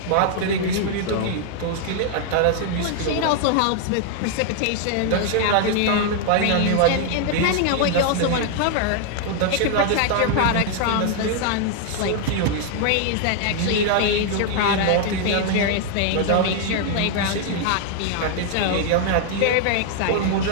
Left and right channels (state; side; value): different; both; correlation 0.00